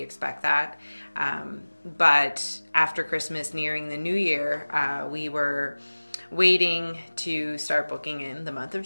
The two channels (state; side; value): inverted; both; correlation -1.00